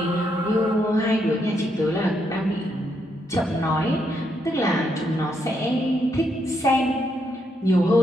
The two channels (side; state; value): both; normal; correlation 0.78